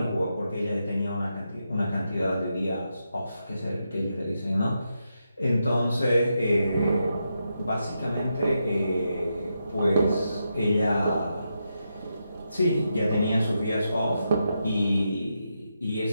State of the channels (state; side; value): inverted; both; correlation -0.85